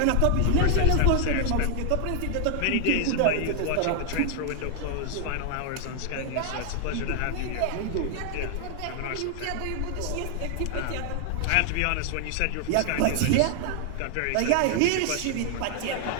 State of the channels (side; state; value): both; different; correlation 0.00